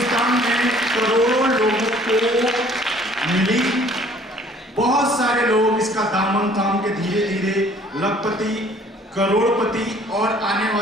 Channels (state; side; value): normal; both; correlation 0.55